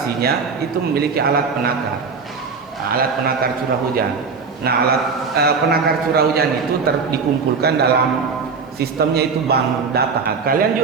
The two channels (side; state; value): left; quieter; 5.2 dB